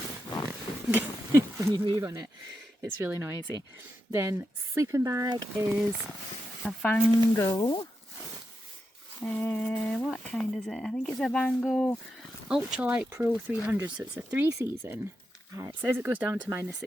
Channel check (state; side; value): normal; both; correlation 0.87